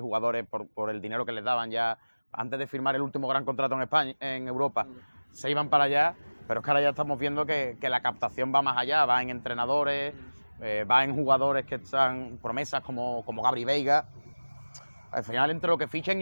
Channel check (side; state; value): both; inverted; correlation -1.00